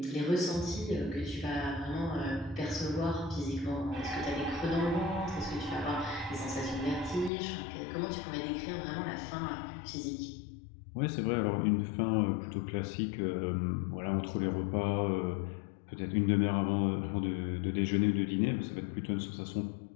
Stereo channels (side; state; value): right; drops out; at 7.3 s